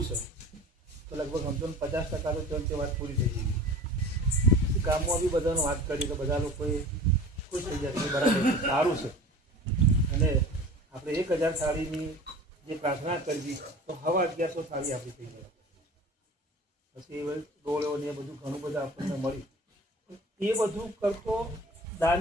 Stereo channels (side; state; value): both; normal; correlation 0.40